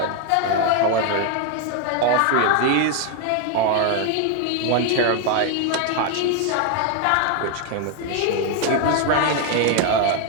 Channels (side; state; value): both; different; correlation 0.01